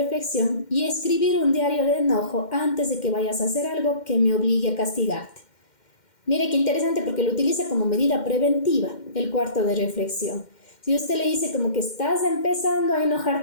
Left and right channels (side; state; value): right; late; 2.1 ms